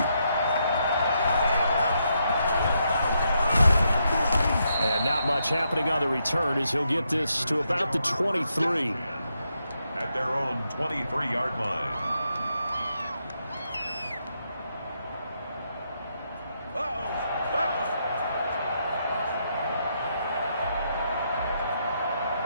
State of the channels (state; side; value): inverted; both; correlation -0.80